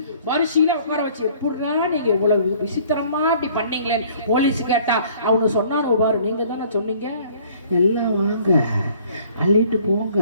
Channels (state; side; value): inverted; both; correlation -0.55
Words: வரிசையில உட்கார வச்சு, எப்படின்னா நீங்க இவ்வளவு விசித்திரமா இப்படி பண்ணீங்களேன்னு போலீஸ் கேட்டா அவனு சொன்னானு பாரு, நீங்க தானே சொன்னீங்க எல்லாம் வாங்க அள்ளிட்டு போங்க,